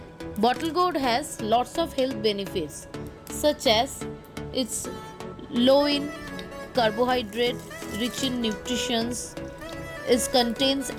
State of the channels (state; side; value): identical; both; correlation 1.00